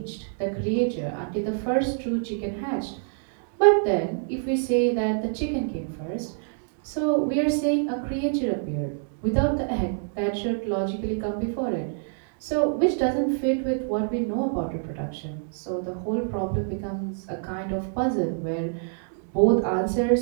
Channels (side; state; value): left; silent; digital silence